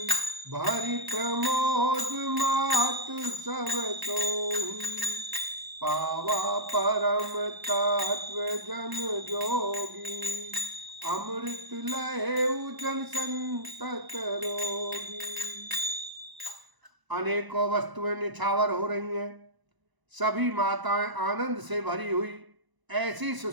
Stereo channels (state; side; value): late; left; 1.0 ms